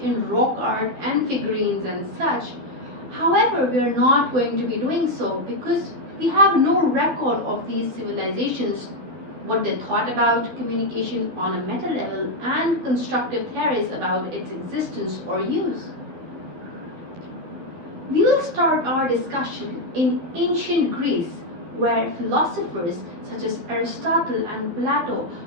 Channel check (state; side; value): late; left; 12 ms